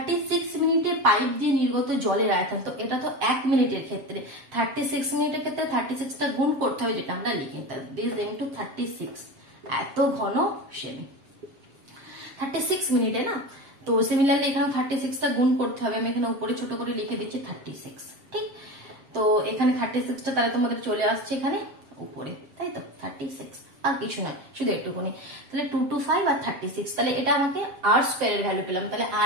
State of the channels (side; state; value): left; late; 7.5 ms